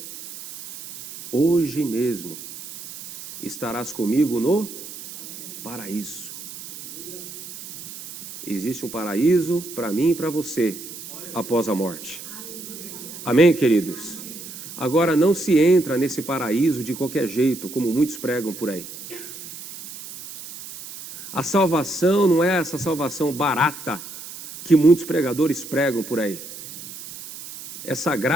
Hoje mesmo estarás comigo no paraíso. Existe um paraíso para mim e para você após a morte. Amém, queridos? Agora, não se entra nesse paraíso de qualquer jeito, como muitos pregam por aí. A salvação não é essa salvação barata que muitos pregadores pregam por aí. Essa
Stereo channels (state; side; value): noise; right; hiss, 13 dB below the sound